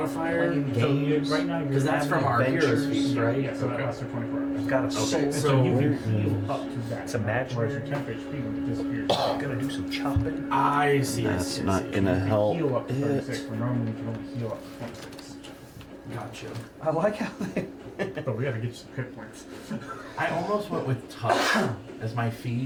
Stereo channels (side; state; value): both; identical; correlation 1.00